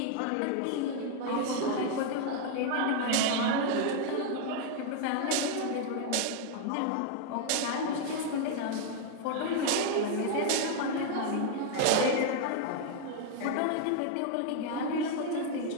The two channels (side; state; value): both; different; correlation 0.00